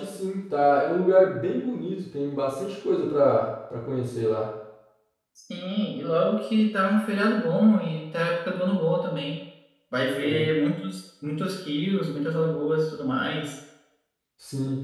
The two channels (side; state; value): both; identical; correlation 1.00